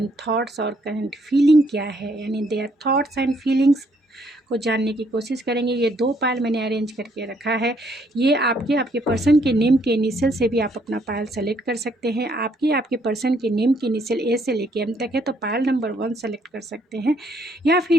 थॉट्स और करंट फीलिंग क्या है, यानी देयर थॉट्स एंड फीलिंग्स को जानने की कोशिश करेंगे। ये दो पायल मैंने अरेंज करके रखा है। ये आपके पर्सन के नेम के इनिशियल से भी आप अपना पायल सेलेक्ट कर सकते हैं। आपके पर्सन के नेम के इनिशियल ए से लेके एम तक है तो पायल नंबर 1 सेलेक्ट कर सकते हैं, या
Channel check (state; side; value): normal; both; correlation 0.69